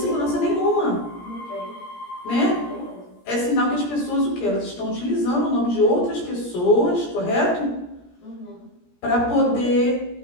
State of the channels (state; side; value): late; right; 17 ms